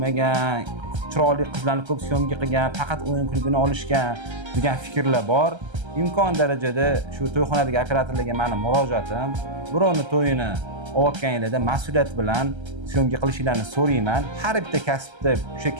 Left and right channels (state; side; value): late; left; 1.3 ms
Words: chiroyli qizlarni ko'p syomka qilgan, faqat o'yin klubini olishgan degan fikrlar bor. Imkon darajada shu to'yxonadagi operatorlarga meni murojaatim, birovni to'yini olayotganinglarda mas'uliyat bilan syomka qilishinglarni so'rayman. Har bitta kasbda o'sha